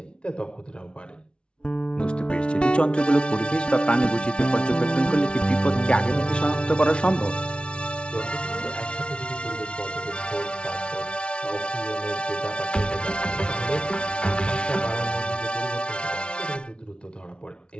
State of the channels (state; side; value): late; right; 0.058 ms